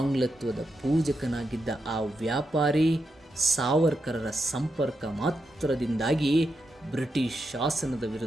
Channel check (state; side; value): normal; both; correlation 0.85